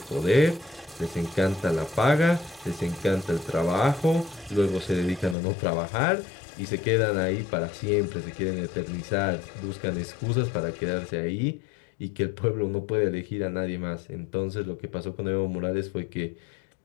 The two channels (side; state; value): right; drops out; at 5.4 s